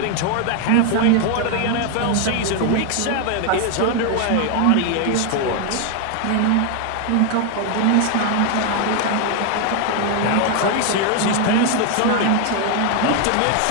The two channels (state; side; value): different; both; correlation 0.01